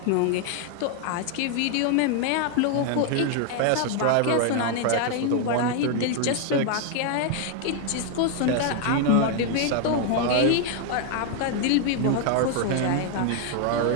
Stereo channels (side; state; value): both; different; correlation 0.00